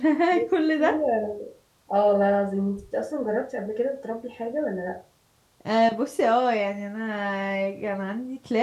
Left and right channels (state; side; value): identical; both; correlation 1.00